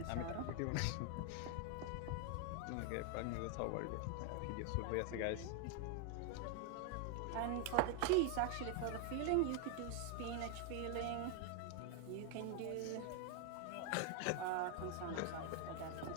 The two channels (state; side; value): different; both; correlation 0.00